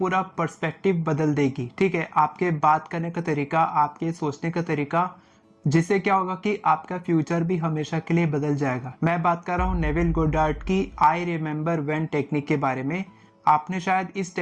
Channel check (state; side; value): identical; both; correlation 1.00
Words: पर्सपेक्टिव बदल देगी। ठीक है, आपके बात करने का तरीका, आपके सोचने का तरीका, जिससे क्या होगा कि आपका फ्यूचर भी हमेशा के लिए बदल जाएगा। मैं बात कर रहा हूं नेविल गोडार्ड की आई रिमेम्बर व्हेन टेक्निक के बारे में। आपने शायद इस